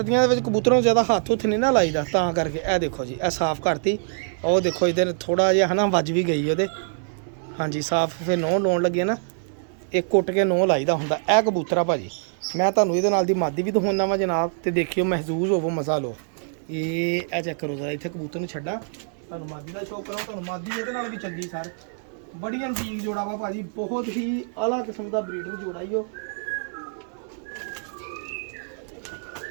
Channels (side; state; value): left; silent; 62 dB below the other